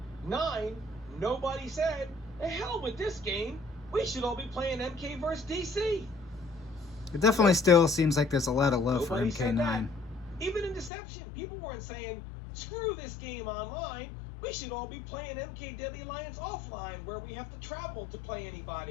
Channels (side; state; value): right; drops out; at 10.9 s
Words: Nobody said, "The hell with this game. We should all be playing MK versus DC." It definitely still seems like there's a lot of love Nobody for MK9. Even in Deception, people weren't saying, "Screw this game online. We should all be playing MK Deadly Alliance offline, where we have to travel to play